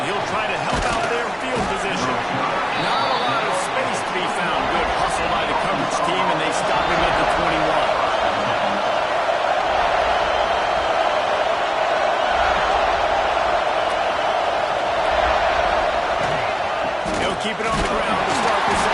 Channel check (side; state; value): both; identical; correlation 1.00